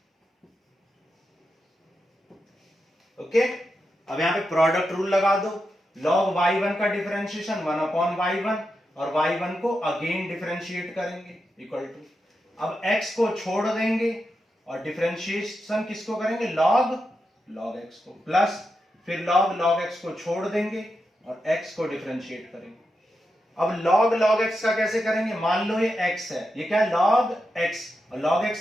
ओके, अब यहां पे प्रोडक्ट रूल लगा दो, log y1 का डिफरेंशिएशन 1 अपॉन y1 और y1 को अगेन डिफरेंशिएट करेंगे इक्वल टू, अब x को छोड़ देंगे और डिफरेंशिएशन किसको करेंगे, log x को, प्लस फिर log x को छोड़ देंगे और x को डिफरेंशिएट करेंगे। अब log x का कैसे करेंगे, मान लो ये x है, ये क्या है log x, और log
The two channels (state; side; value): normal; both; correlation 0.87